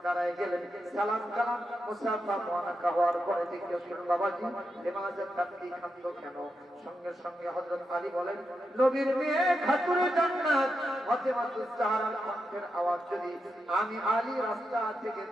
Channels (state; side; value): normal; both; correlation 0.86